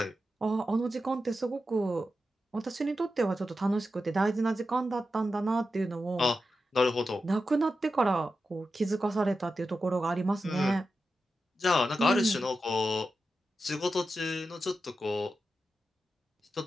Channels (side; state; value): both; normal; correlation 0.90